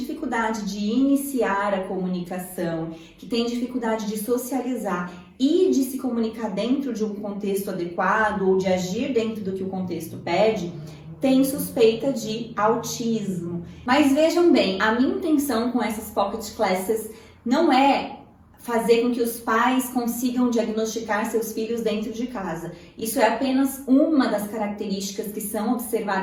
de iniciar a comunicação, que têm dificuldade de socializar e de se comunicar dentro de um contexto adequado ou de agir dentro do que o contexto pede, tem suspeita de autismo. Mas vejam bem, a minha intenção com essas Pocket Classes não é fazer com que os pais consigam diagnosticar seus filhos dentro de casa. Isso é apenas uma das características que são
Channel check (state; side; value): identical; both; correlation 1.00